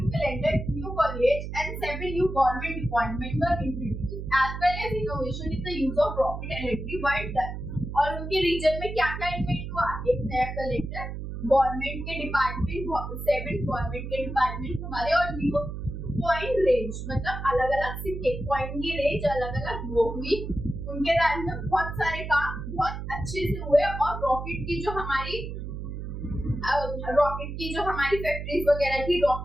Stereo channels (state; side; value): noise; right; hum, 7 dB below the sound